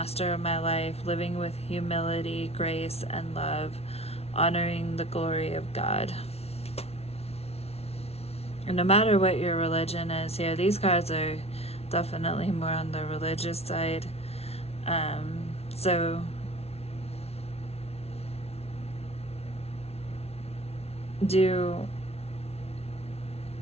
of my life, living with humility, grace, and love, honoring the glory of God. And no matter what your religion is here, these cards are definitely more on the religious side. So do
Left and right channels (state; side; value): late; right; 0.30 ms